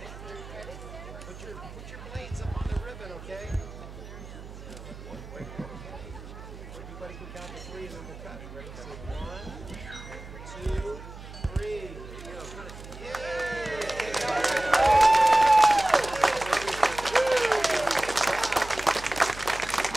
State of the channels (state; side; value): noise; right; hum, 14 dB below the sound